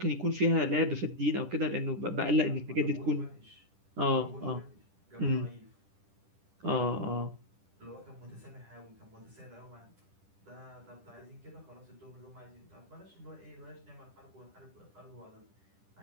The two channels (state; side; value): late; left; 10 ms